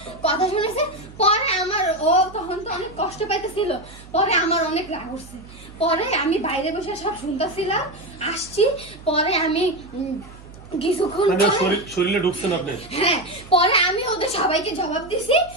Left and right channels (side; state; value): right; noise; hum, 19 dB below the sound